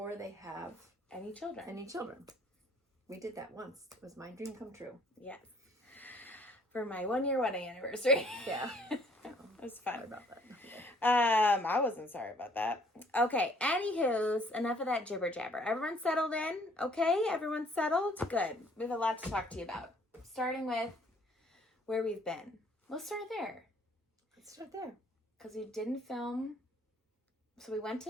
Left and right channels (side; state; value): both; normal; correlation 0.60